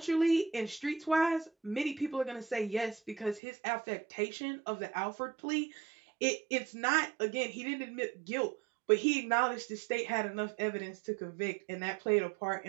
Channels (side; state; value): left; drops out; at 3.4 s